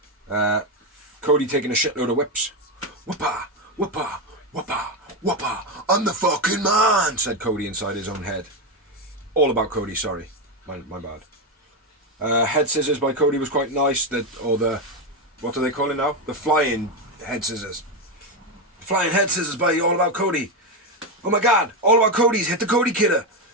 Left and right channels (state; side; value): normal; both; correlation 0.10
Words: Cody taking a shitload of whips. Whoopa, whoopa, whoopa, whoopa. I'm the fucking man, said Cody inside his own head. All about Cody, sorry. My bad. Head scissors by Cody was quite nice. What do they call it now? The flying head scissors. Flying head scissors by All About Cody. Oh my god, All About Cody's hit the Cody